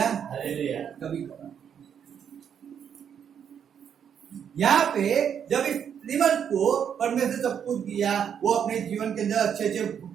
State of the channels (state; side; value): quieter; left; 8.2 dB